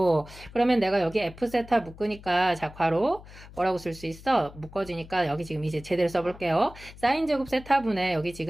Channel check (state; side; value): noise; left; hum, 18 dB below the sound